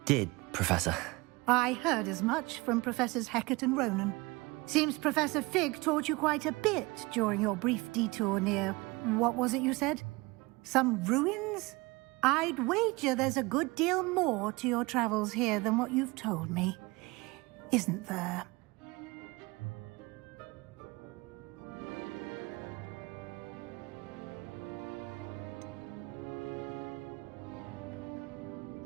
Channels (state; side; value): quieter; left; 23.9 dB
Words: did, Professor. I heard as much from Professors Hecat and Ronan. Seems Professor Fig taught you quite a bit during your brief detour near... what was it you said? Some ruins? I'd wager there's a good deal more to your travels here than what you've told me. Isn't there?